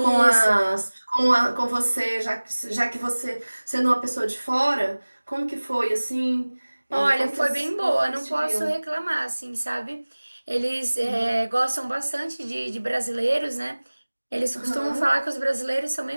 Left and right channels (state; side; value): inverted; both; correlation -1.00